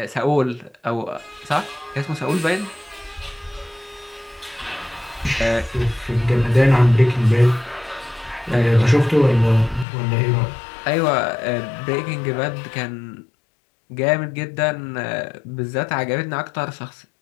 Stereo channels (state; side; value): drops out; right; at 9.9 s